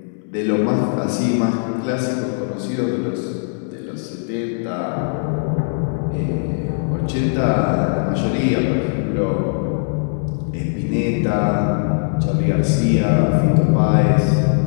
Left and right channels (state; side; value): silent; right; 66 dB below the other